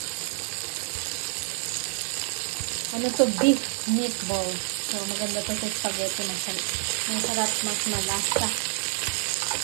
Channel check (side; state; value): left; silent; 60 dB below the other